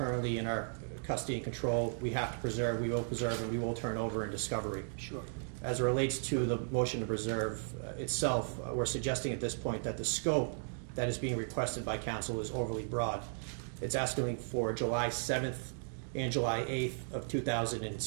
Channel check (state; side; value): silent; left; digital silence